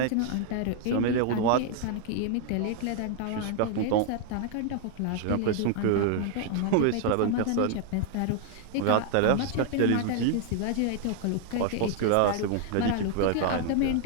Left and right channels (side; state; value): both; different; correlation 0.00